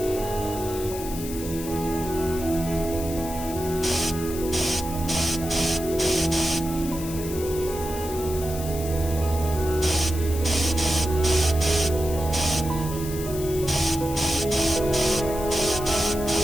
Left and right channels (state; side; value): noise; left; hiss, 11 dB below the sound